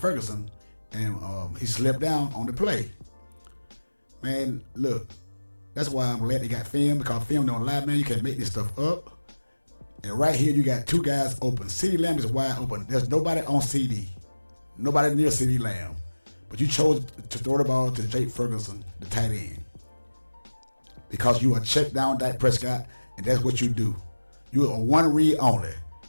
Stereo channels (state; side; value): inverted; both; correlation -1.00